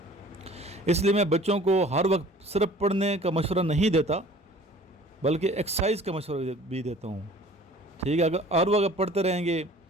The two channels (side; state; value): both; normal; correlation 0.48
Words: اس لیے میں بچوں کو ہر وقت صرف پڑھنے کا مشورہ نہیں دیتا بلکہ ایکسرسائز کا مشورہ بھی دیتا ہوں، ٹھیک ہے۔ اگر ہر وقت پڑھتے رہیں گے،